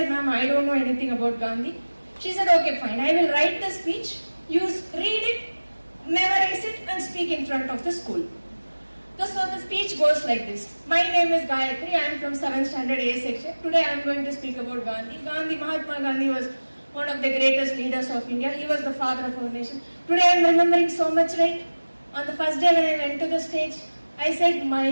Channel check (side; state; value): both; inverted; correlation -1.00